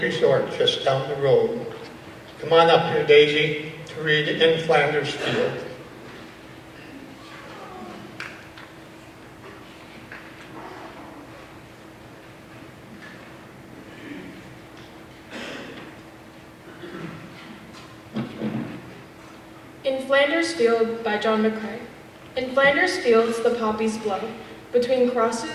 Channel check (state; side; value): identical; both; correlation 1.00